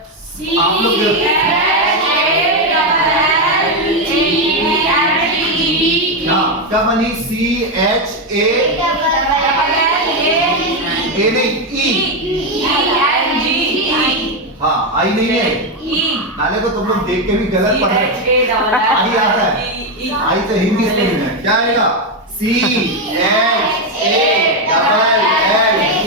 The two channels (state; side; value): normal; both; correlation 0.07